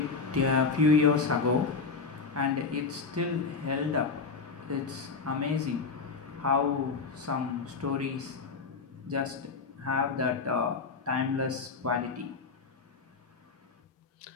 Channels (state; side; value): quieter; right; 4.6 dB